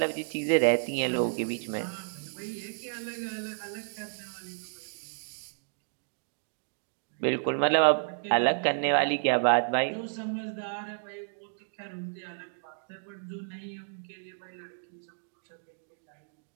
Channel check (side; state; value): left; silent; digital silence